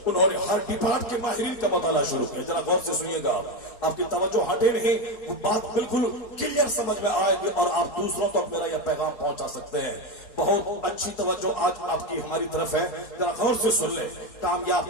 انہوں نے ہر ڈپارٹ کے ماہرین کا مطالعہ شروع کیا. ذرا غور سے سنیے گا, آپ کی توجہ ہٹے نہیں, وہ بات بالکل کلیئر سمجھ میں آئے گی اور آپ دوسروں تک میرا یہ پیغام پہنچا سکتے ہیں. بہت اچھی توجہ آج آپ کی ہماری طرف ہے, ذرا غور سے سن لیں. کامیاب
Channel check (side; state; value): right; late; 4.2 ms